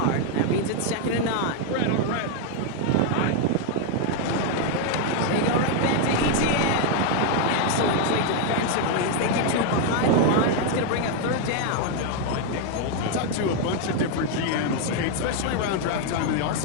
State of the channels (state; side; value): different; both; correlation 0.01